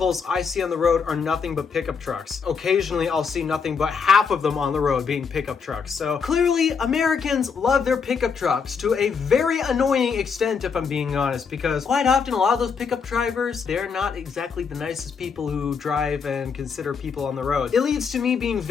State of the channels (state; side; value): quieter; right; 5.9 dB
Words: I see on the road are nothing but pickup trucks. Occasionally, I'll see nothing but half of them on the road being pickup trucks. So clearly, Americans love their pickup trucks to a very annoying extent, if I'm being honest, because quite often a lot of those pickup drivers, they're not exactly the nicest people who drive and consider people on the road. It leads to me being